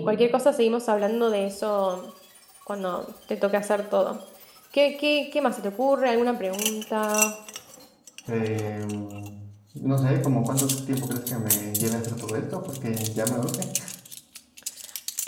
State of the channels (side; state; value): both; identical; correlation 1.00